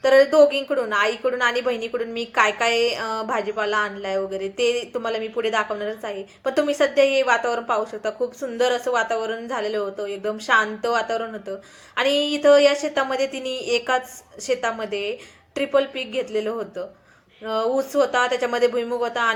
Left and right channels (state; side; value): identical; both; correlation 1.00